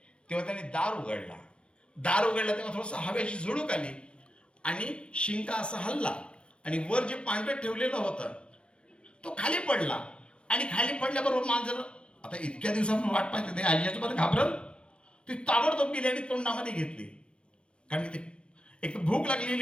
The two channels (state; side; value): late; right; 0.057 ms